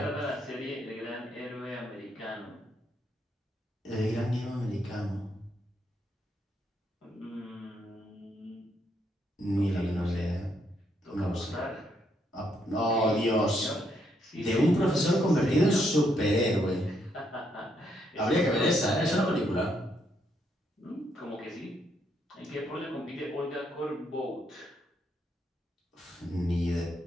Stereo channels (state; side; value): normal; both; correlation 0.75